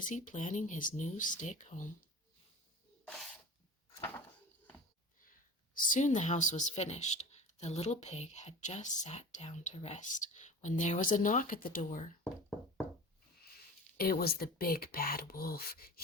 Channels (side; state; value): both; normal; correlation 0.37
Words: planning his new stick home. Soon the house was finished. The little pig had just sat down to rest when there was a knock at the door. It was the big bad wolf.